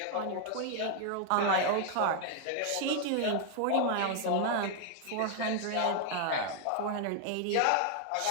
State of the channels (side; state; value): both; different; correlation 0.00